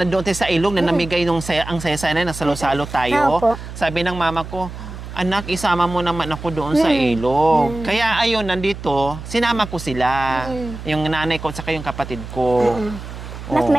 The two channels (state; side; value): noise; right; hum, 11 dB below the sound